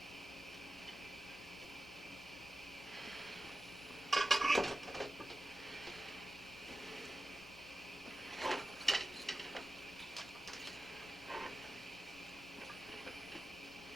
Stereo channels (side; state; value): left; noise; hum, 22 dB below the sound